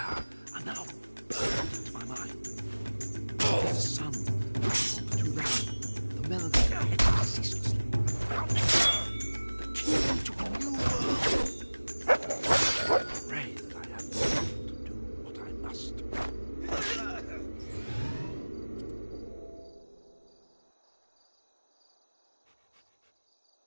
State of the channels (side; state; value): both; inverted; correlation -1.00